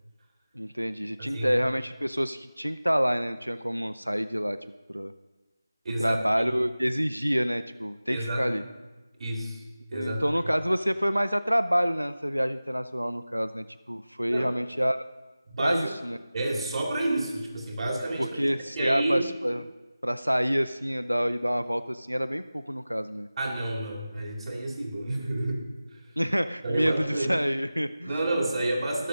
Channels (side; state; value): both; inverted; correlation -0.96